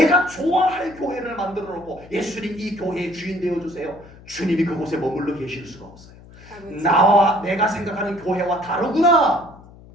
좋아할 교회를 만들어 놓고 예수님 이 교회의 주인 되어 주세요. 주님이 그곳에 머물러 계실 수가 없어요. 나와 내가 생각하는 교회와 다르구나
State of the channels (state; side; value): noise; left; hum, 21 dB below the sound